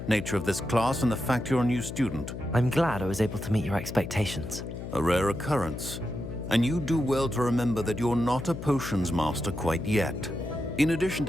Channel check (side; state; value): left; noise; hum, 8 dB below the sound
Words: nature of this class and the fact you're a new student. I'm glad I was able to meet your expectations. A rare occurrence. And you do well to remember that you're not a potions master quite yet. In addition